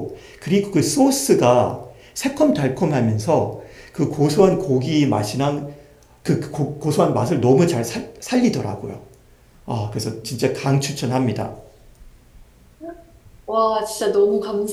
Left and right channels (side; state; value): both; identical; correlation 1.00